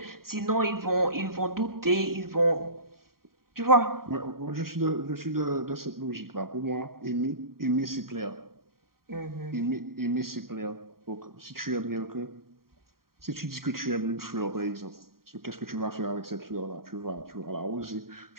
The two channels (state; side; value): late; left; 0.93 ms